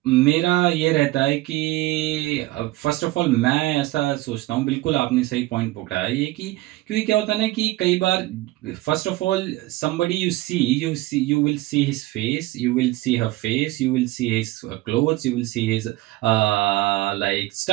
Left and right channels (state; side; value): quieter; left; 18.4 dB